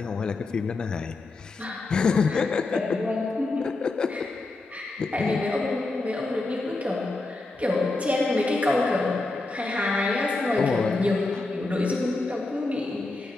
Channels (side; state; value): right; quieter; 3.2 dB